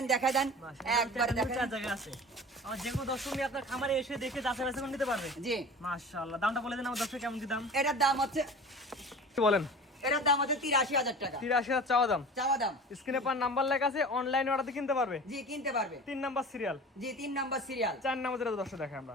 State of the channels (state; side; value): normal; both; correlation 0.38